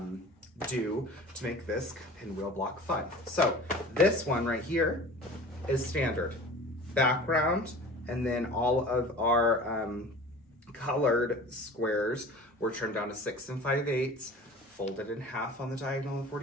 do to make this pinwheel block fun. So this one right here is standard background, and then all of our colored squares were turned down to 6 5/8, folded in half on the diagonal of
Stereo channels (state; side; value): normal; both; correlation 0.41